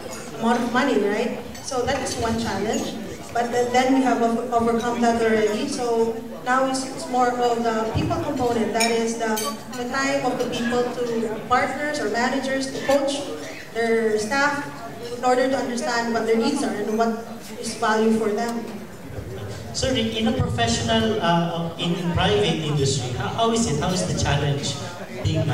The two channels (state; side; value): identical; both; correlation 1.00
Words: amount of money, right? So that is one challenge, but then we have overcome that already. So now it's more of the people component, that is the time of the people to partners or managers to coach their staff in order to understand what their needs are and what is value for them. So in a professional, in private industry, how is it? How is the challenge being